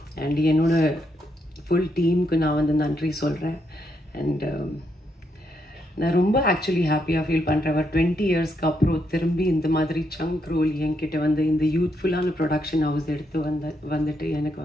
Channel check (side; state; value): both; normal; correlation 0.78